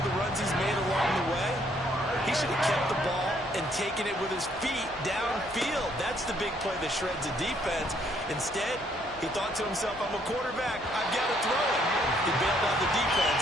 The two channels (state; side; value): normal; both; correlation 0.68